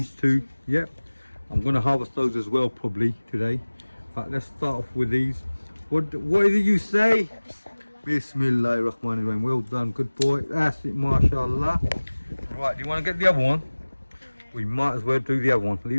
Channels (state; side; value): inverted; both; correlation -1.00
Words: two. Yep. I'm gonna harvest those as well probably today. But let's start off with these. What did you say? Bismillahirrahmanirrahim. Well done, good boy. That's it, mashallah. Right, do you want to get the other one? We might as well do the other one.